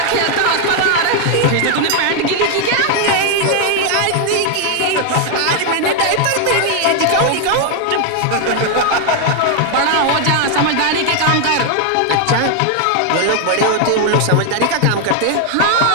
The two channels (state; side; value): different; both; correlation 0.00